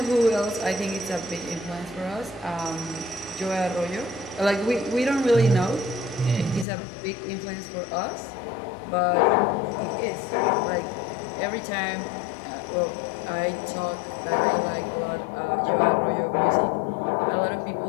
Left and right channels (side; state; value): right; drops out; at 6.7 s